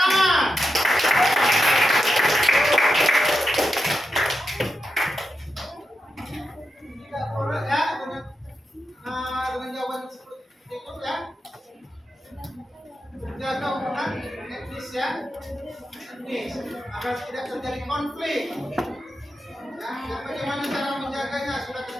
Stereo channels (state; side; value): normal; both; correlation 0.87